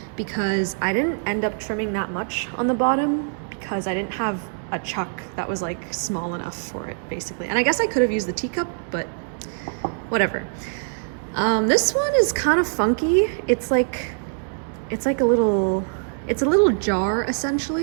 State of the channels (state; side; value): silent; left; digital silence